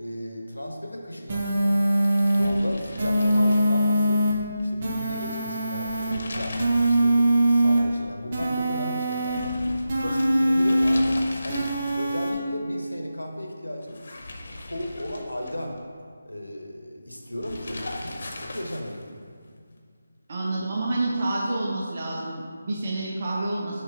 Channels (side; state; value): both; inverted; correlation -0.90